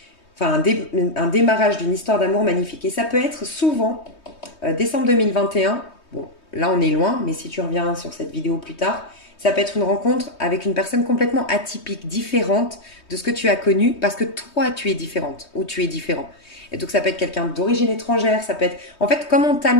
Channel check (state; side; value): late; right; 3.2 ms